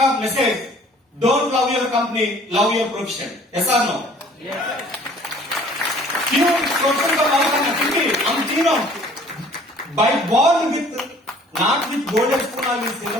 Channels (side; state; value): both; normal; correlation 0.54